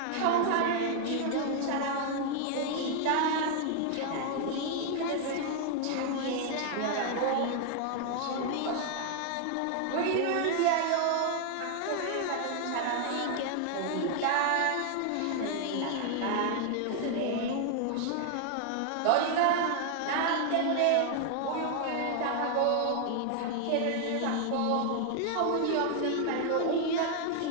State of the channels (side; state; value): both; different; correlation 0.00